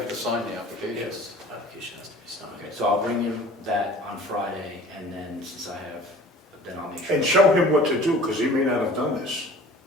to sign the application. Yes, application has to be signed. Okay, so I'll bring him that on Friday, and then since I have, then I'll make sure. And show him what to do, because he may not have done this.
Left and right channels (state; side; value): normal; both; correlation 0.46